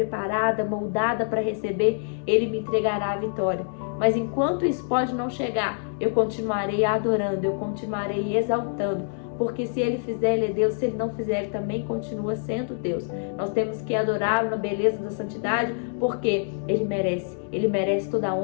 moldada para receber, Ele me entregará a vitória. Mas enquanto isso pode não chegar, eu continuarei adorando, eu continuarei exaltando. Porque se Ele fizer, Ele é Deus. Se Ele não fizer, Ele também continua sendo Deus. Nós temos que adorá-lo na beleza da santidade, porque Ele merece toda a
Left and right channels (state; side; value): silent; right; digital silence